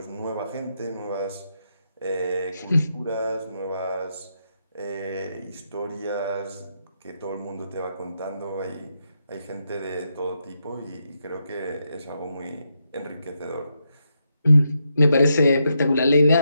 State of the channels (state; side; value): inverted; both; correlation -0.82